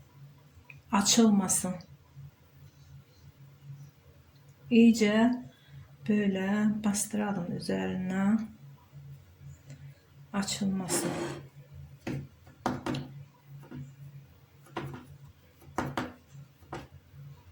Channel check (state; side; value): identical; both; correlation 1.00